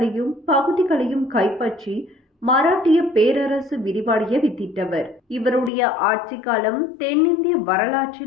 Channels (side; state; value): right; drops out; at 5.7 s